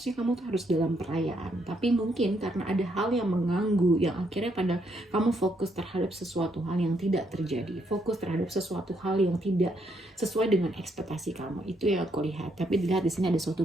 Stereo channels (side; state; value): both; normal; correlation 0.74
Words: kamu tuh harus dalam perayaan, tapi mungkin karena ada hal yang mengganggu yang akhirnya pada kamu fokus terhadap sesuatu hal yang tidak terjadi, fokus terhadap sesuatu hal yang tidak sesuai dengan ekspektasi kamu. Itu yang aku lihat. Tapi dilihat di sini ada